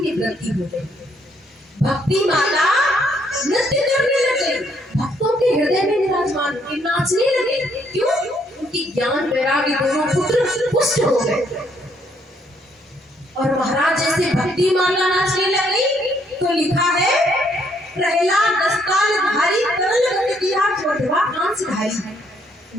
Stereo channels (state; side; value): normal; both; correlation 0.70